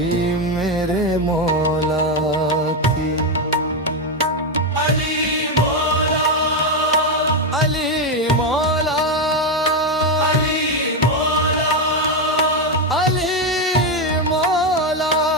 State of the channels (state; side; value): normal; both; correlation 0.07